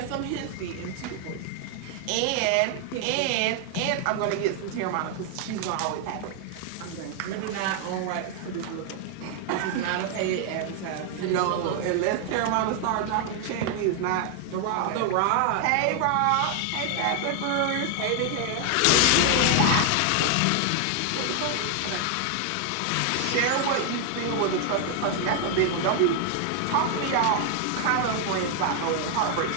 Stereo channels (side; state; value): both; different; correlation 0.00